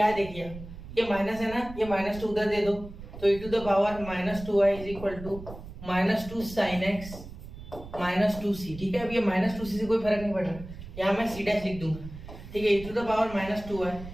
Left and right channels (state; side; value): noise; right; rumble, 14 dB below the sound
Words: देखिए ये माइनस है ना, ये -2 उधर दे दो, तो e to the power -2y is equal to -2 sin x -2c। ठीक है, अब ये -2c से कोई फर्क नहीं पड़ रहा, यहाँ मैं c डैश लिख दूंगा। ठीक है, e to the power -2y